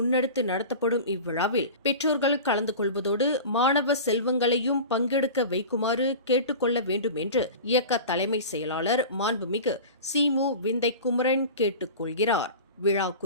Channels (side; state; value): both; inverted; correlation -0.34